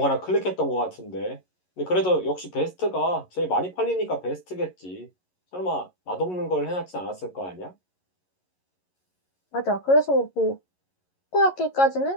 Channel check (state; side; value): late; right; 11 ms